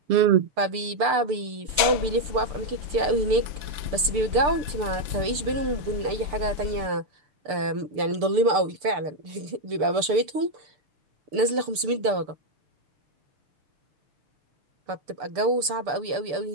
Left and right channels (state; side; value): late; left; 6.8 ms